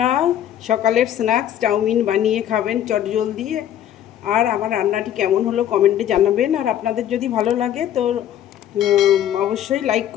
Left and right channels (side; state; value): right; quieter; 10.8 dB